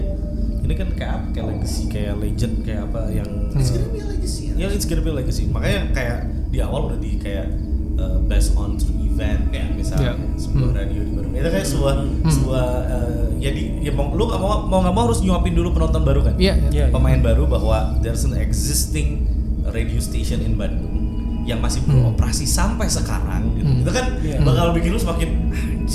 Ini kan kayak apa? Kayak legacy, kayak legend, kayak apa yang it's gonna be a legacy. Ya, it's gonna be a legacy. Makanya kayak di awal udah di kayak based on true event kayak misalnya sebuah radio di baru. Itu kayak sebuah ya lu nggak mau harus nyuapin dulu penonton baru kan? Iya, iya. Pemain baru bahwa there's an existing radio station in Bandung yang masih beroperasi sampai sekarang gitu. Itu kan bakal bikin lu semakin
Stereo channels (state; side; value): identical; both; correlation 1.00